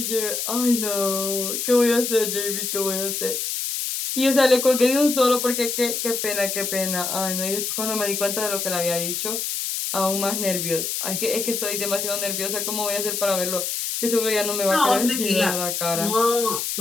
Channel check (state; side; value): noise; left; hiss, 2 dB below the sound